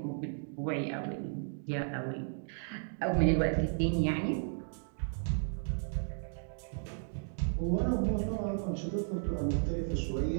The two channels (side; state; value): left; silent; digital silence